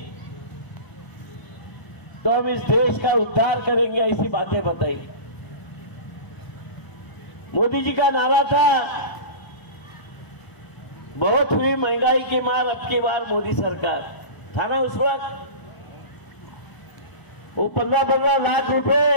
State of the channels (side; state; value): right; late; 1.0 ms